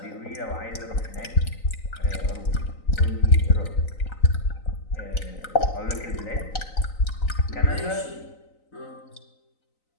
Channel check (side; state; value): right; late; 3.9 ms